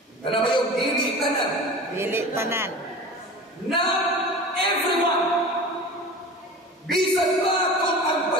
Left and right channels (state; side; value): normal; both; correlation 0.35